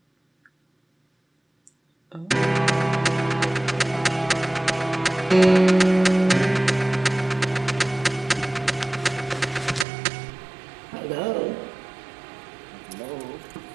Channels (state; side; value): drops out; left; at 9.9 s